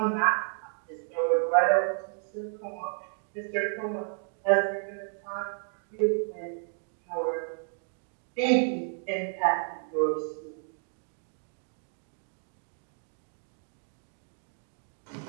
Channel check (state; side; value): silent; left; 57 dB below the other